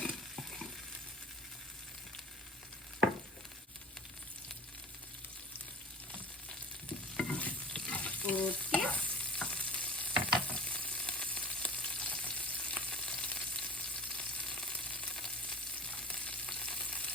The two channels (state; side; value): normal; both; correlation 0.40